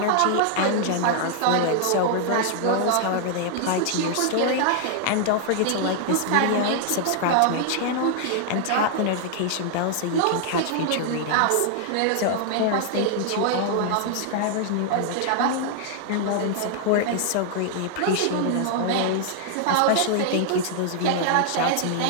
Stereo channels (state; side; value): different; both; correlation -0.01